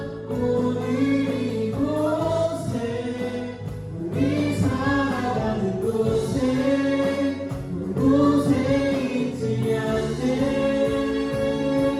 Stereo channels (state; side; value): identical; both; correlation 1.00